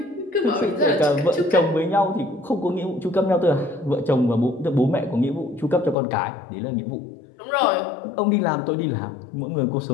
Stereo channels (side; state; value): right; drops out; at 6.0 s